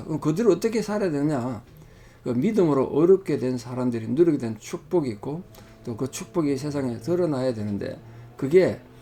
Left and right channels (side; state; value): both; identical; correlation 1.00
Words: 그럼 그대로 어떻게 살아야 되느냐? 그 믿음으로 어렵게 된 사람들이 누리게 된 축복이 있고 또 그 축복이 세상에 드러나야 되는데 그게